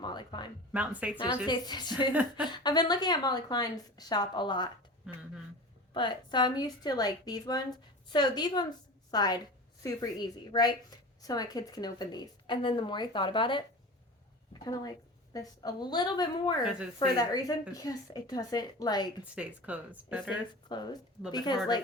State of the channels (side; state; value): both; normal; correlation 0.33